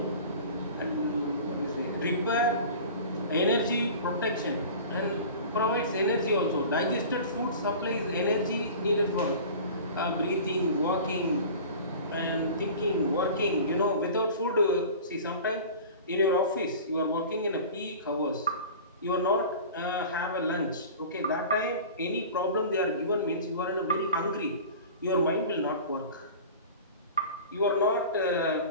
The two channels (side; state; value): both; inverted; correlation -0.39